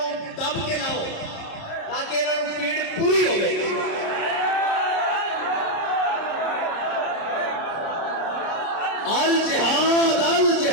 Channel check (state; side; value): late; right; 30 ms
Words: دب کے لاؤ تاکہ انہوں نے پیڑ پوری ہو گئی۔ الجہاد